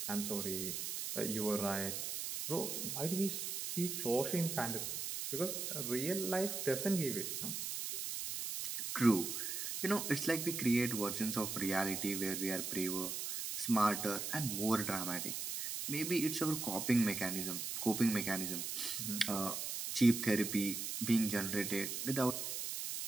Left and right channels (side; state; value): right; noise; hiss, 3 dB below the sound